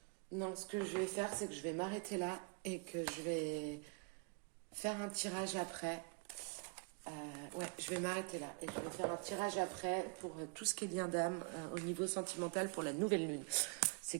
Non, ce que je vais faire, c'est que je vais m'arrêter là et que je vais faire un tirage après. Ouais, je vais m'arrêter là et je vais faire un tirage après pour tout ce qui est lien d'âme au niveau sentimental pour la nouvelle lune. C'est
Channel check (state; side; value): quieter; left; 33.5 dB